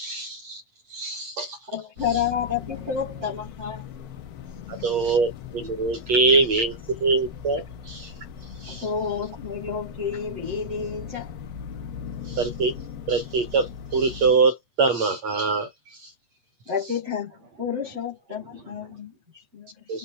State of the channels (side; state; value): left; late; 8.6 ms